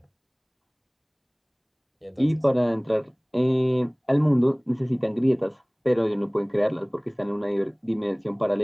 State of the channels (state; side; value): identical; both; correlation 1.00